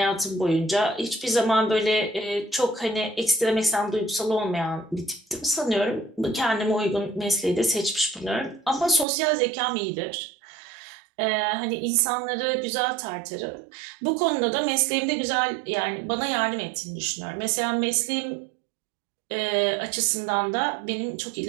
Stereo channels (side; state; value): left; drops out; at 9.1 s